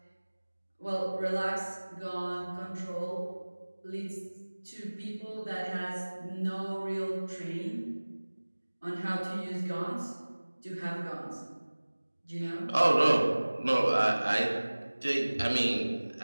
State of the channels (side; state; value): both; inverted; correlation -1.00